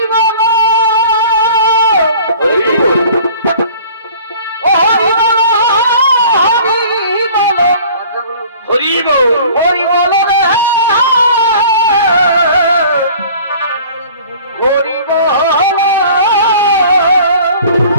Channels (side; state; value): both; inverted; correlation -0.48